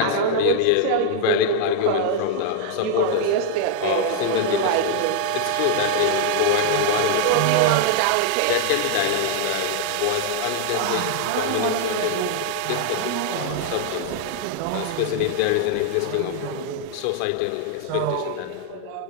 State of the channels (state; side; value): different; both; correlation 0.00